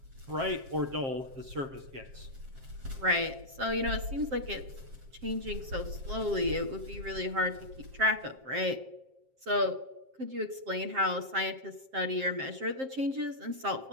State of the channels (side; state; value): left; late; 7.5 ms